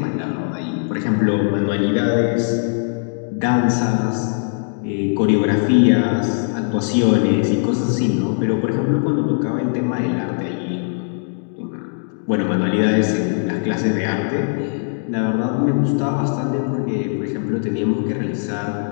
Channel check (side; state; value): right; silent; 66 dB below the other